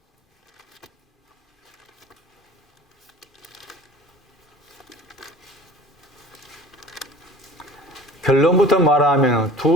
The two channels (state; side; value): normal; both; correlation 0.43